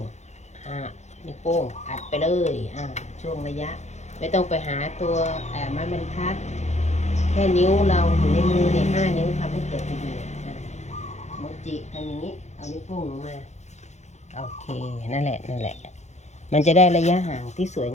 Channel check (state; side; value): late; right; 0.33 ms